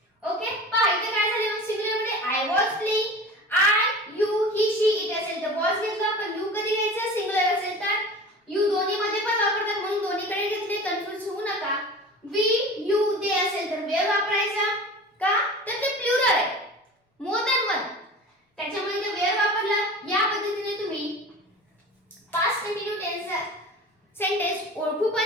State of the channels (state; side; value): normal; both; correlation 0.37